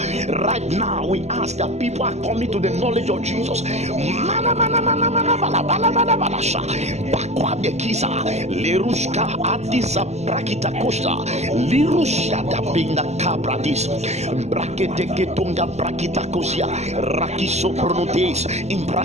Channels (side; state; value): left; late; 0.32 ms